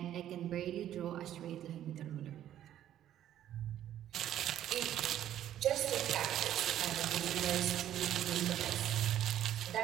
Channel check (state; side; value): quieter; left; 11.6 dB